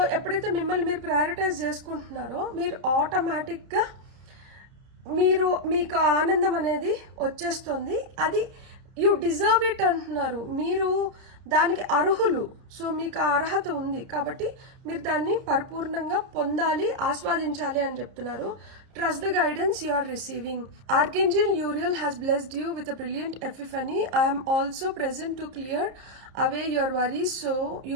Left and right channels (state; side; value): late; left; 30 ms